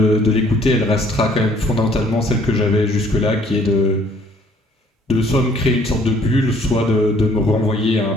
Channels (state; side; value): normal; both; correlation 0.60